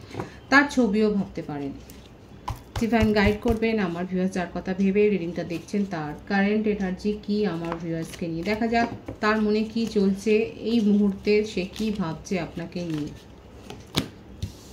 তার ছবিও ভাবতে পারেন। ডিভাইন গাইড করবেন আমার ভিউয়ার্স যার কথা ভেবে রিডিংটা দেখছেন তার কারেন্ট এনার্জি কি আমার ভিউয়ার্সকে নিয়ে। দেখা যাক তার মনে কি চলছে এই মুহূর্তে, সে কি ভাবছে আপনাকে নিয়ে।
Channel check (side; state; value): both; identical; correlation 1.00